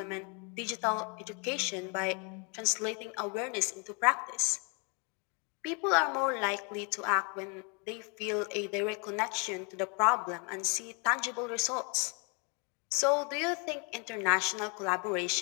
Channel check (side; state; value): right; quieter; 34.5 dB